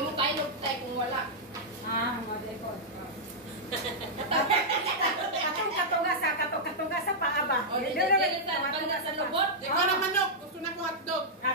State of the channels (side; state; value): both; normal; correlation -0.08